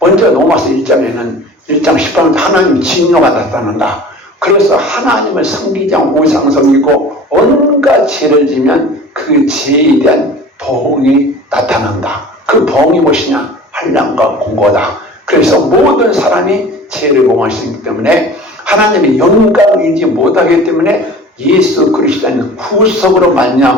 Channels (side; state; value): both; normal; correlation 0.41